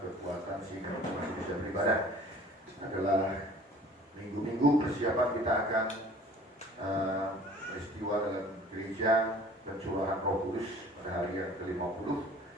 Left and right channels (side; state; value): both; normal; correlation 0.49